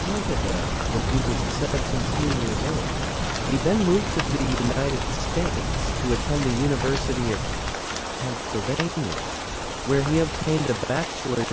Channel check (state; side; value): identical; both; correlation 1.00